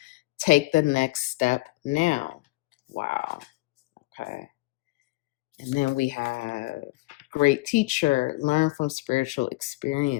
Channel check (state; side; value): quieter; right; 21.3 dB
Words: take the next step now. Wow. Okay. And then we have great teacher, learn from spiritual